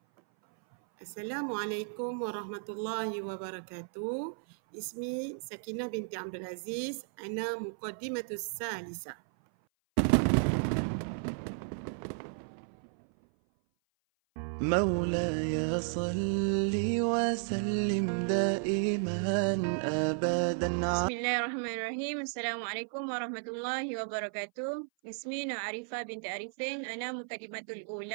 Assalamualaikum warahmatullahi wabarakatuh. Ismi Sakinah binti Abdul Aziz. Ana muqaddimatus salisa. مولاي صل وسلم دائما أبدا. Bismillahirrahmanirrahim. Assalamualaikum warahmatullahi wabarakatuh. اسمي نعرفة بنت عريفين أنا مقدمة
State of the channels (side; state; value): left; silent; 55 dB below the other